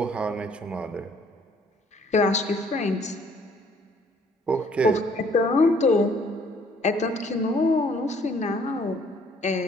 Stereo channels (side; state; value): both; normal; correlation 0.61